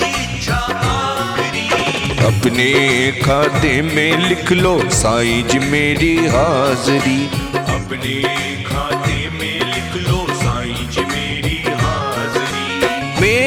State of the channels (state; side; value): identical; both; correlation 1.00